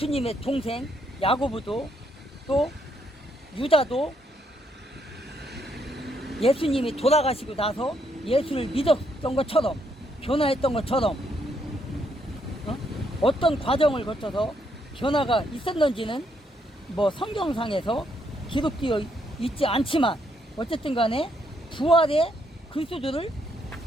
동생 야고보도, 또 유다도 예수님이 돌아가시고 나서 예수를 믿었던 것처럼, 변화했던 것처럼 어떤 과정을 거쳐서 변화가 있었는지는 뭐 성경상에서 기록되어 있지 않지만, 어쨌든 간에 부활의 그리스도를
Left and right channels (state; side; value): normal; both; correlation 0.74